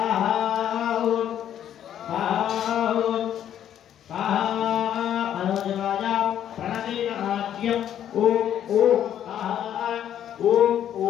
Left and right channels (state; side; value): quieter; right; 10.4 dB